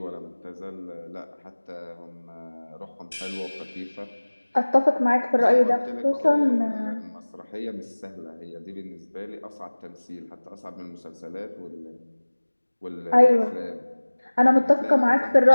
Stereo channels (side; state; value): both; inverted; correlation -1.00